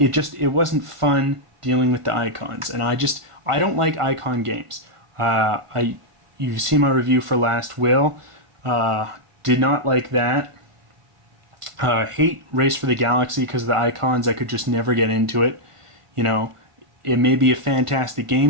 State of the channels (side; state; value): left; late; 1.5 ms